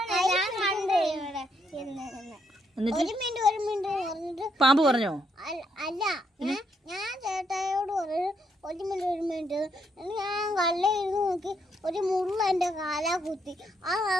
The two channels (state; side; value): normal; both; correlation 0.76